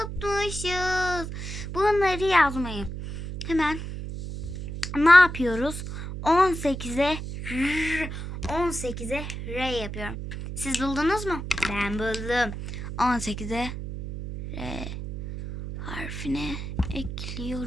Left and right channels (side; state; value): right; noise; hum, 7 dB below the sound